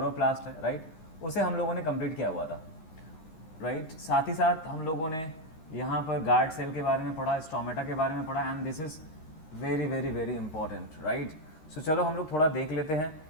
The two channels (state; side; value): late; right; 13 ms